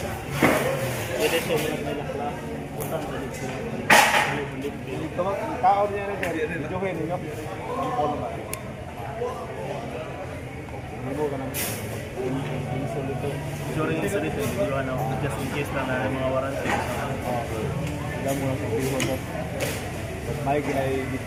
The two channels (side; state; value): both; identical; correlation 1.00